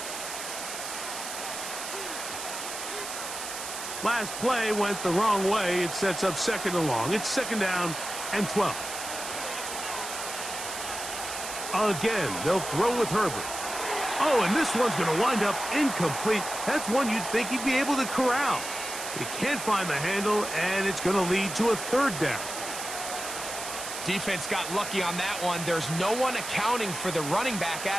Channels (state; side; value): noise; right; hiss, 7 dB below the sound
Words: Last play went the wrong way. It sets up second and long. It's second down and 12. Again, they'll throw with Herbert. Oh, and this one's going to wind up incomplete. That's one you'd think he'd be able to corral. He can't find the handle, and it's going to lead to a third down. Defense got lucky on that one. There's no one accounting for the running back